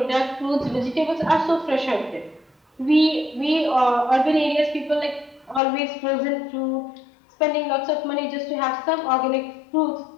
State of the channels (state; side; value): drops out; right; at 5.6 s